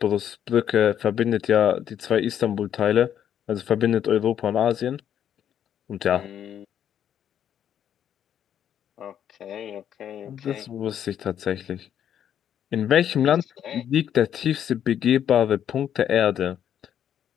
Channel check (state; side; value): quieter; right; 9.6 dB